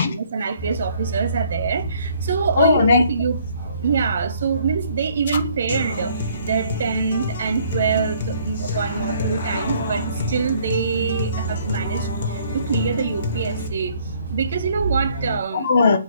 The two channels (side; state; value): both; inverted; correlation -0.62